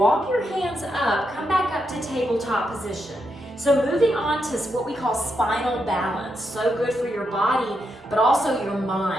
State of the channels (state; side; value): normal; both; correlation 0.82